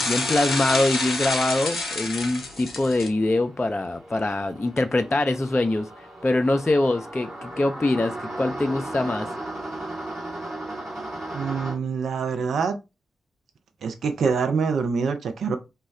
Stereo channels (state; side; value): normal; both; correlation 0.88